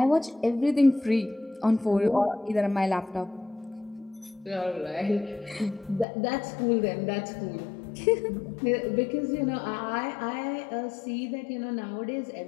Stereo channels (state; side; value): drops out; right; at 6.1 s